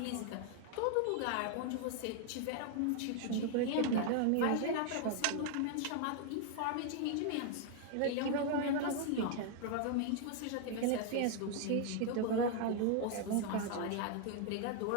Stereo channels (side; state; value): both; different; correlation 0.00